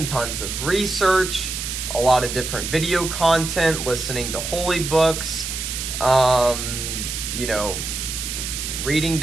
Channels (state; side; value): noise; right; hiss, 5 dB below the sound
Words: tons of research, a lot of different video content, listening to holy books, reading